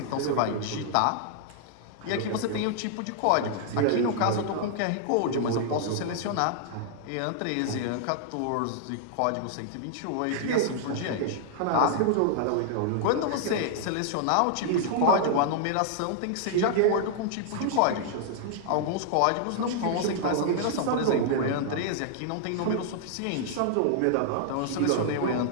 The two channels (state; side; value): different; both; correlation -0.01